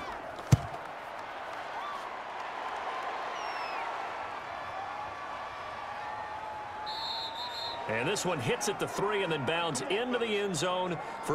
And this one hits at the 3 and then bounds into the end zone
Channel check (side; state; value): both; identical; correlation 1.00